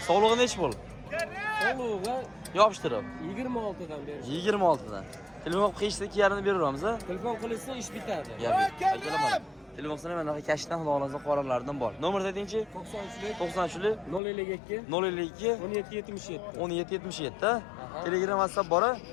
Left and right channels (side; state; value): right; drops out; at 14.2 s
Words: Sog'lig'i nechi bo'l? Sog'lig'i Yopishtirib 26 dan berish. 26 dan. Telefon qilib qilishsa 2,5 beraveramiz. Telefon qilishsa ish bitadi. Akalar mana telefon qilsa mana kashdan xudo xolasa qoralardan bor. Nomer dedingchi? 93 052 052 1777. 1777. Telegram, WhatsApp bor?